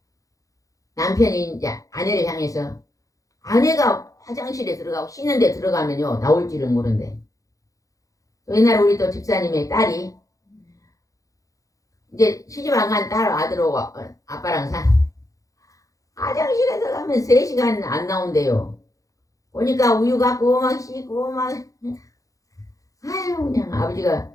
남편이 이제 아내를 향해서 아내가 화장실에 들어가고 씻는 데 들어가면요 나올지는 모른대. 옛날에 우리 또 집사님의 딸이 이제 시집 안 간 딸 아들하고 아빠랑 화장실에 들어가면 3시간 안 나온대요. 보니까 우유 갖고 막 씻고 막 아유 그냥 아버지가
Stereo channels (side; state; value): right; late; 0.16 ms